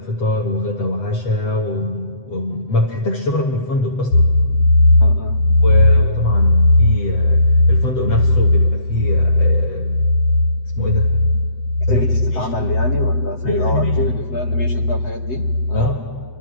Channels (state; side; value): late; right; 7.9 ms